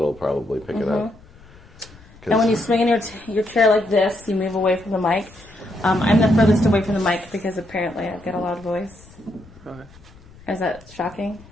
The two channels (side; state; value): left; noise; rumble, 24 dB below the sound